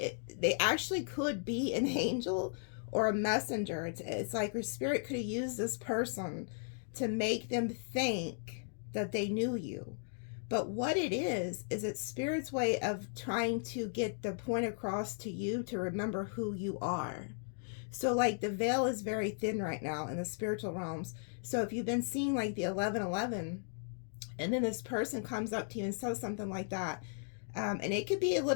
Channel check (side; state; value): right; silent; digital silence